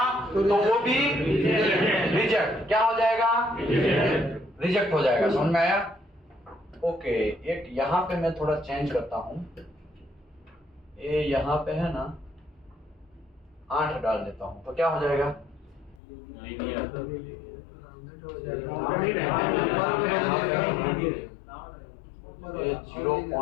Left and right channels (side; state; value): right; drops out; at 16.0 s